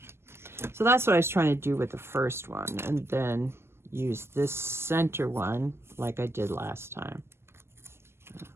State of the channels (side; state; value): left; late; 0.12 ms